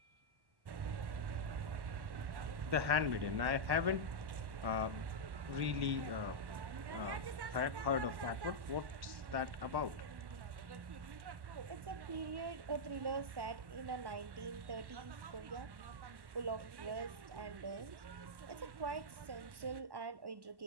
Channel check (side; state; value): left; late; 1.1 ms